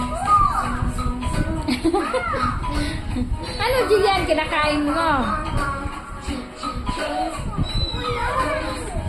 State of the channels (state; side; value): identical; both; correlation 1.00